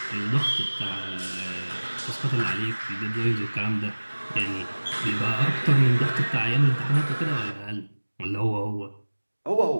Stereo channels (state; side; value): inverted; both; correlation -1.00